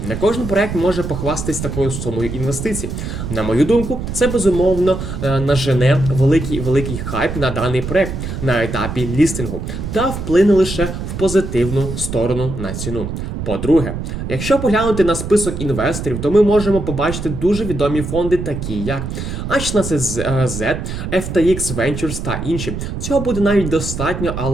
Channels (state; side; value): noise; right; rumble, 6 dB below the sound